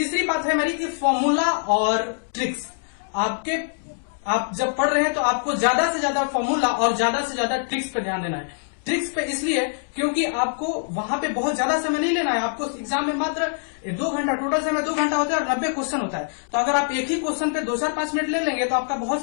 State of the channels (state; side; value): silent; right; 62 dB below the other